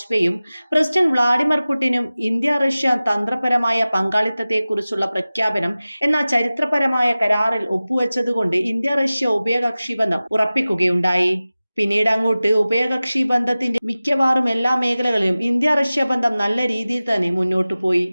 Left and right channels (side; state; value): both; inverted; correlation -0.97